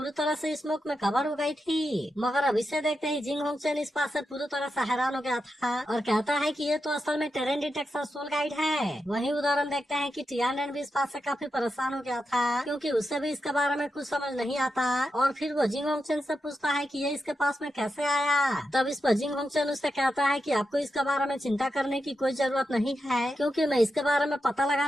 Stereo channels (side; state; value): both; normal; correlation 0.87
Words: तरह से स्मोक में कवर हो गई थी। मगर अब इसे देखते ही जिंग होंगचेन इस बात से पूरी तरह से हैरान हो गया था और कहता है कि ये तो असल में टेरेन डिटेक्शन सोल गाइड है। वही उदाहरण देखते हैं कि टियानन भी इस बात से काफी परेशान हो गया था, क्योंकि उससे भी इसके बारे में कुछ समझ नहीं आता और फिर वो जिंग होंगचेन से पूछता है कि ये इसके पास में कैसे आया। तब इस पर जिंग होंगचेन उससे कहता है कि आपको इसके बारे में चिंता करने की कोई जरूरत नहीं है, क्योंकि मैं इसके बारे में पता